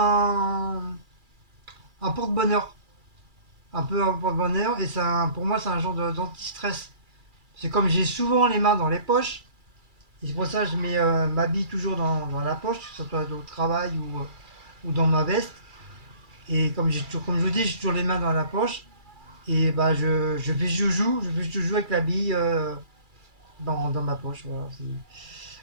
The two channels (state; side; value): late; left; 2.3 ms